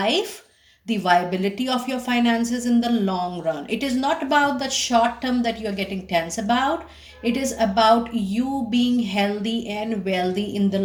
the viability of your finances in the long run. It is not about the short term that you're getting tense about. It is about you being healthy and wealthy in the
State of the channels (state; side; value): identical; both; correlation 1.00